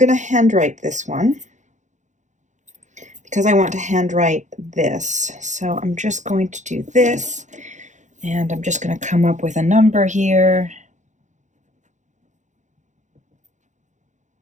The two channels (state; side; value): late; left; 0.35 ms